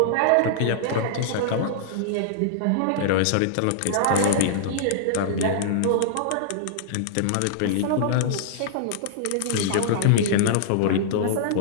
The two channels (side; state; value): both; different; correlation -0.01